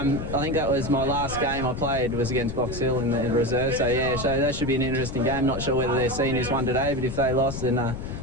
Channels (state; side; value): noise; left; rumble, 7 dB below the sound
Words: I think that was my last game I played was against Box Hill in the reserve. So yeah, so that should be an interesting game. Not sure whether their seniors won today, but if they lost, then